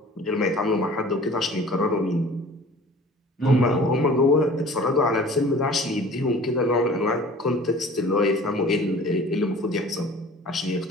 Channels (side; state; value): both; normal; correlation 0.45